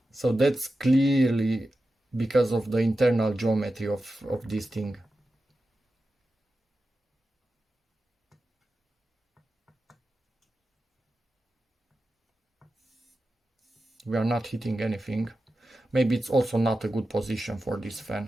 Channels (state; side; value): normal; both; correlation 0.92